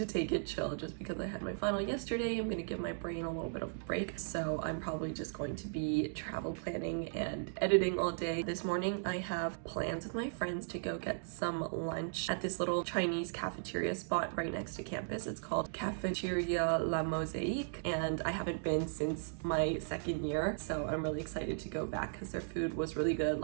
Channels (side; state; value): left; silent; digital silence